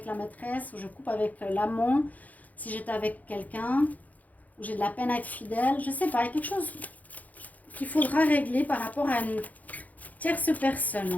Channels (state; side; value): late; right; 0.078 ms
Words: la maîtresse, ou je coupe avec l'amant, si j'étais avec quelqu'un, ou j'ai de la peine à être fidèle, je ne sais pas, il y a quelque chose qu'il faudra régler par rapport à une tierce